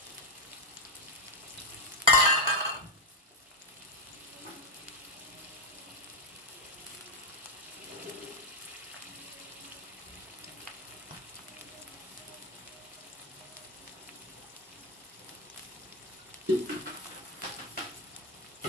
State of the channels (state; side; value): normal; both; correlation 0.05